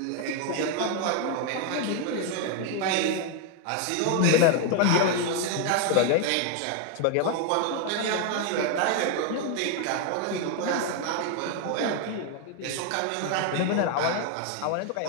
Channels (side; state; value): both; different; correlation 0.01